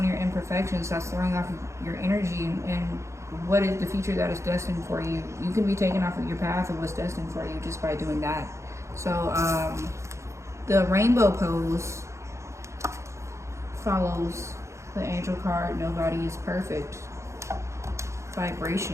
your imperfections, that's throwing off your energy and what is the future that is destined for you. You can be taken off of your path of what's destined for you just by doing that. So the rainbow pose follows the angel card, nobody is perfect.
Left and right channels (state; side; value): late; left; 0.14 ms